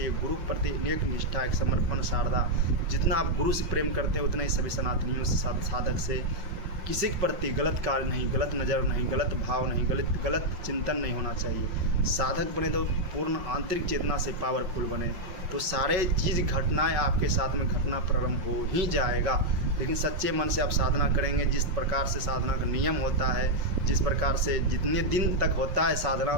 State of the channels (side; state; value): left; late; 5.4 ms